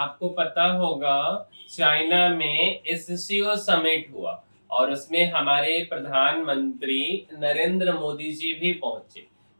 पता होगा चाइना में एससीओ समिट हुआ और उसमें हमारे प्रधानमंत्री नरेंद्र मोदी जी भी पहुंचे।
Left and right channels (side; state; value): both; inverted; correlation -1.00